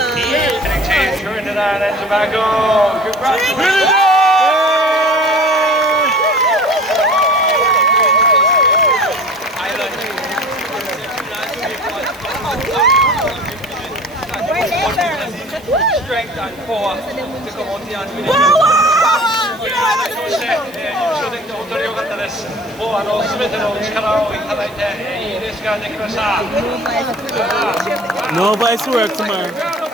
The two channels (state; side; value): noise; right; hiss, 25 dB below the sound